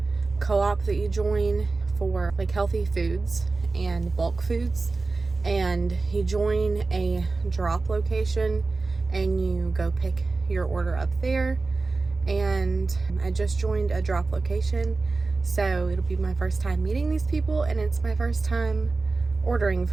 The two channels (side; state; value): left; quieter; 3.7 dB